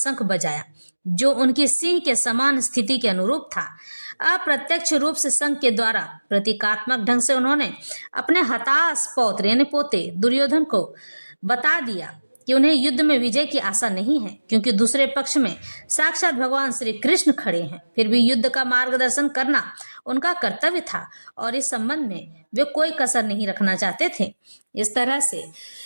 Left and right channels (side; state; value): both; inverted; correlation -1.00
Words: बजाया, जो उनकी सिंह के समान स्थिति के अनुरूप था। अप्रत्यक्ष रूप से शंख के द्वारा प्रतीकात्मक ढंग से उन्होंने अपने हताश पौत्र यानी पोते दुर्योधन को बता दिया कि उन्हें युद्ध में विजय की आशा नहीं है, क्योंकि दूसरे पक्ष में साक्षात भगवान श्री कृष्ण खड़े हैं। फिर भी युद्ध का मार्गदर्शन करना उनका कर्तव्य था और इस संबंध में वे कोई कसर नहीं रखना चाहते थे। इस तरह से